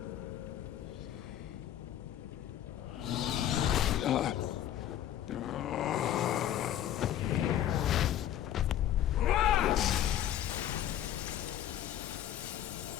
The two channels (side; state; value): right; quieter; 11.5 dB